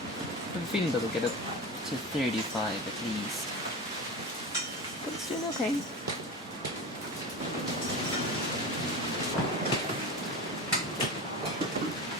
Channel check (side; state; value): both; normal; correlation 0.27